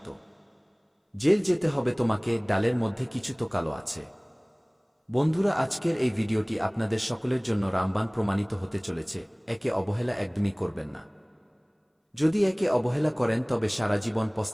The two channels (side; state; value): both; identical; correlation 1.00